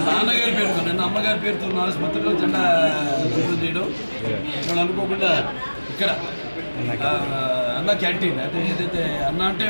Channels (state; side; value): inverted; both; correlation -1.00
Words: నాన్నగారి పేరుతో నిన్న అమ్మగారి పేరుతో ఉన్న ఆసుపత్రిలో జెండా ఓపెన్ చేయడం ఇవాళ అనుకోకుండా ఇక్కడ అన్న క్యాంటీన్ అంటే ఏదైతే అన్న అంటే